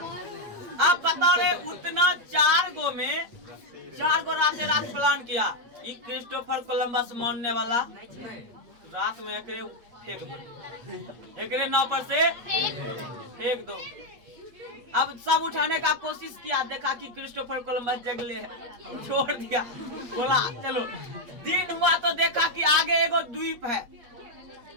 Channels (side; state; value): left; late; 8.4 ms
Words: अब बताओ रे, उतना 4 गो में 4 गो रात प्लान किया। ये क्रिस्टोफर कोलंबस मानने वाला रात में एकरे फेंक दो, एकरे नाव पर से फेंक दो। अब सब उठाने का कोशिश किया, देखा कि क्रिस्टोफर कोलंबस जगले है, छोड़ दिया। बोला चलो, दिन हुआ तो देखा कि आगे एगो द्वीप है